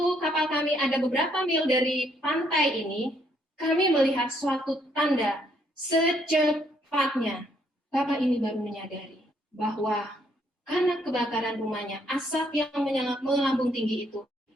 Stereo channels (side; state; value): both; normal; correlation 0.70